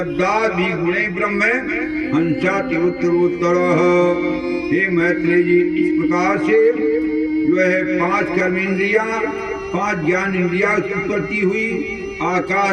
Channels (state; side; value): identical; both; correlation 1.00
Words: गुणे ब्रह्म हंसाति उत्तरोत्तर। हे मैत्रेय जी, इस प्रकार से जो है 5 कर्मेंद्रिया, 5 ज्ञान इंद्रिया की उत्पत्ति हुई।